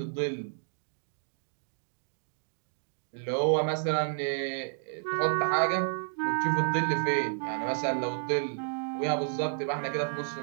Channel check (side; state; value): left; silent; digital silence